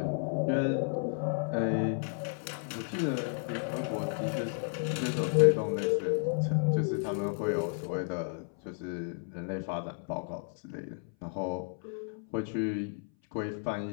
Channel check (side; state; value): right; silent; 56 dB below the other